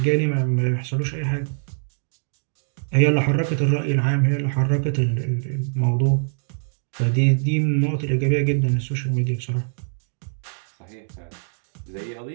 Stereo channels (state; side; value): silent; left; digital silence